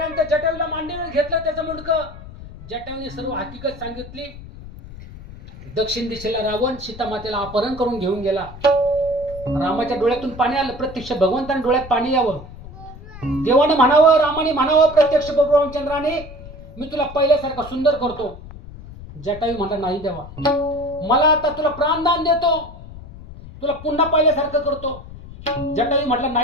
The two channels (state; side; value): noise; left; rumble, 15 dB below the sound